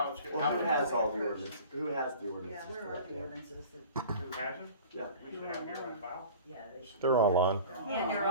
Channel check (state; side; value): inverted; both; correlation -0.41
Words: it's, Well, who has all the ordinances? Who has the yeah, ordinances? where for are that the yet? ordinances that, who has it? Yeah. We should have it here on file. yeah, they should. They're online. And they're